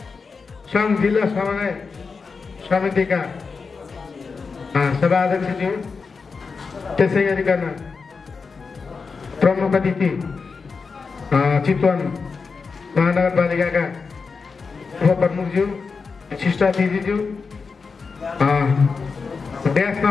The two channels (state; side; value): quieter; right; 4.9 dB